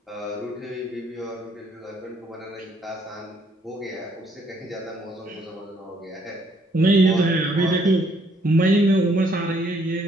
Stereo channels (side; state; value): both; normal; correlation 0.67